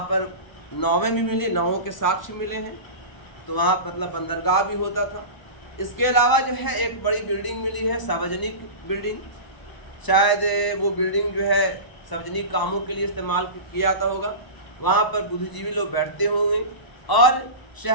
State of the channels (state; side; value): late; right; 1.0 ms